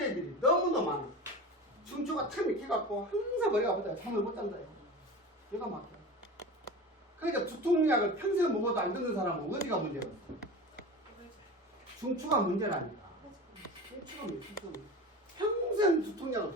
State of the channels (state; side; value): normal; both; correlation 0.31